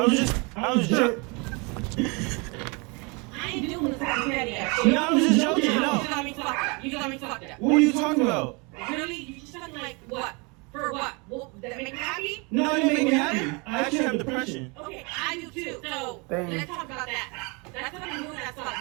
was just I ain't doing this fucking petty ass shit. No, I was just joking, no. You just got me fucked up. You just got me fucked up. What are you talking about? Really? You just talking like what? For what? Well, does that make you happy? No, it didn't make me happy. I actually have depression. Okay, I do too. So Dang. let's talk about that. That's what I'm doing. That's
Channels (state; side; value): quieter; left; 30.3 dB